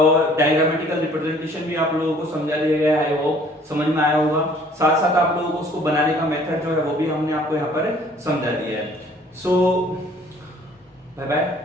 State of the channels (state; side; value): normal; both; correlation 0.56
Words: डायग्रामेटिकल रिप्रेजेंटेशन भी आप लोगों को समझा दिया गया है, वो समझ में आया होगा। साथ साथ आप लोगों को उसको बनाने का मेथड जो है वो भी हमने आपको यहाँ पर समझा दिया है। So bye bye,